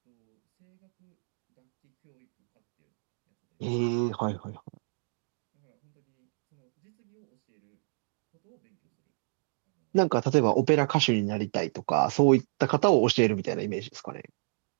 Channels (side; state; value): left; silent; digital silence